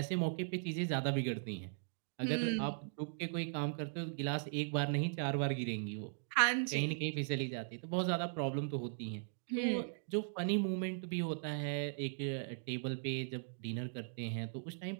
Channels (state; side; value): silent; left; digital silence